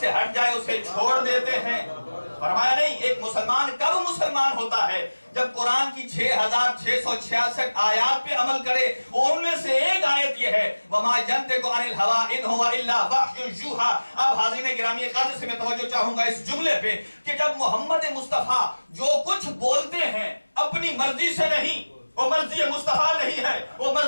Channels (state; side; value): inverted; both; correlation -1.00